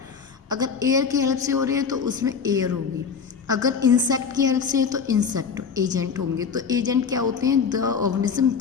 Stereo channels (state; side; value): quieter; right; 6.1 dB